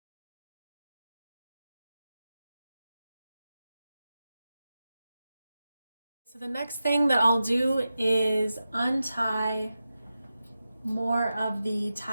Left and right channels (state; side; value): inverted; both; correlation -0.92